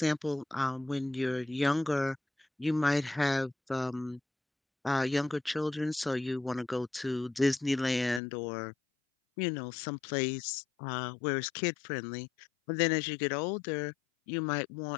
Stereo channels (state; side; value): drops out; right; at 8.2 s